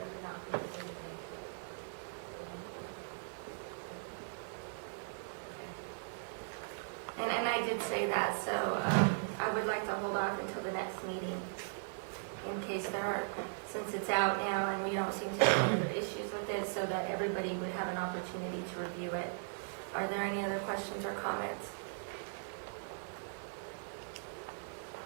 would not be anything to it. Okay. And I did say that, so I would like to hold off until the next meeting in case there are, since it's out now and we don't seem to have any other issues with it, so that everybody would have an opportunity to review it. Are there any other questions or comments?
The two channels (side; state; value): left; silent; 52 dB below the other